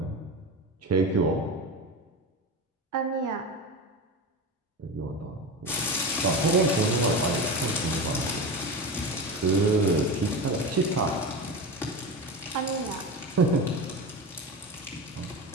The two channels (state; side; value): normal; both; correlation 0.23